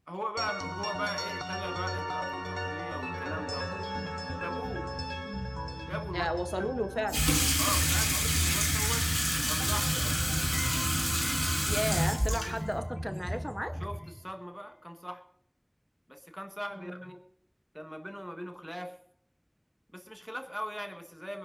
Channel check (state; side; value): identical; both; correlation 1.00